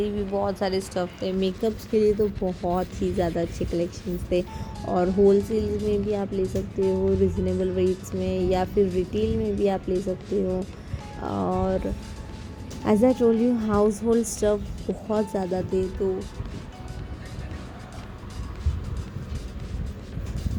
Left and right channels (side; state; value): both; identical; correlation 1.00